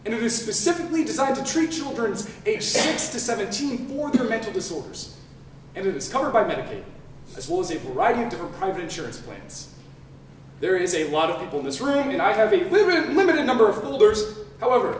and it is specifically designed to treat children aged 6 to 17 for their mental disorders. And it is covered by Medicaid, as well as a variety of different private insurance plans. There is a lot of people in this room, and I have a limited number of folders.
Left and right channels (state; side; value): identical; both; correlation 1.00